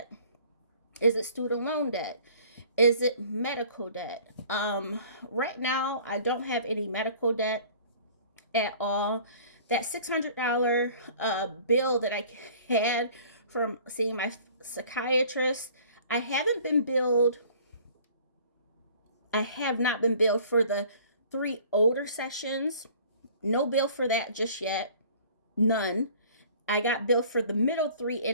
Is it student loan debt? Is it medical debt? Right now, I don't have any medical debt at all. That $600 bill that I had from seeing my psychiatrist, I have not been billed for the 3 older sessions. No bill for that just yet. None. I got billed for the middle 3,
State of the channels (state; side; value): inverted; both; correlation -0.50